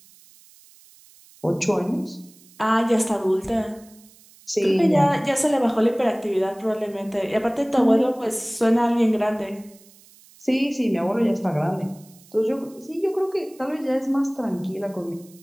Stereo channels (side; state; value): right; noise; hiss, 26 dB below the sound